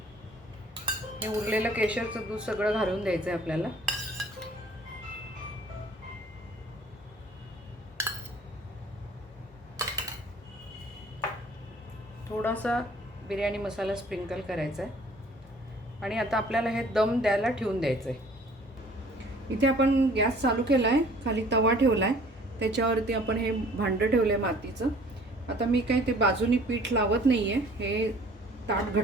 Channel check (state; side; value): normal; both; correlation 0.53